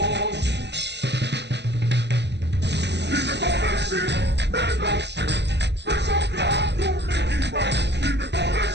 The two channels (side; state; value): left; late; 0.50 ms